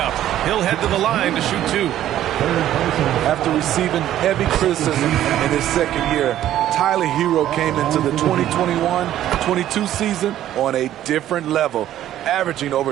He'll head to the line to shoot 2. After receiving heavy criticism in his second year, Tyler Herro came into the 2021-22 season on a different level, averaging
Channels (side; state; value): left; quieter; 12.3 dB